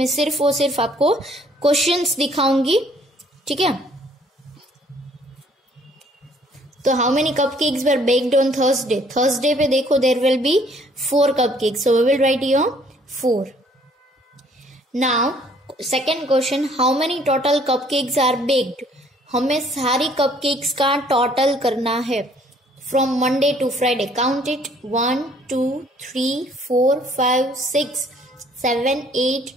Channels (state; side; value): normal; both; correlation 0.61